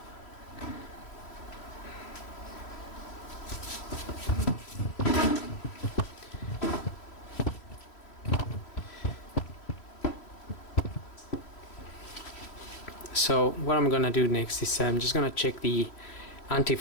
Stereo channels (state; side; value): late; right; 3.1 ms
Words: So what I'm gonna do next is I'm just gonna check the